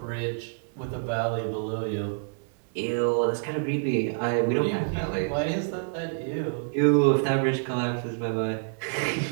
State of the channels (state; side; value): silent; left; 60 dB below the other